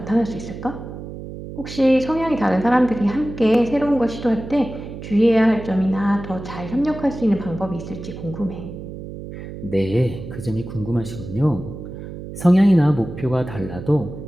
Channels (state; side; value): noise; right; hum, 11 dB below the sound